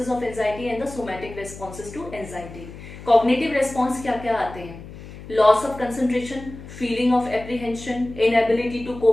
of anxiety and the somatic responses to anxiety. Cognitive response क्या क्या आते हैं? Loss of concentration, feeling of apprehension, inability to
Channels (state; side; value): noise; left; hum, 15 dB below the sound